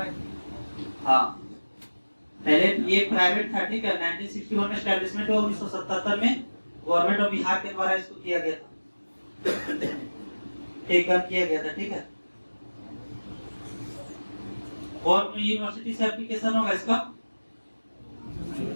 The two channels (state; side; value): inverted; both; correlation -1.00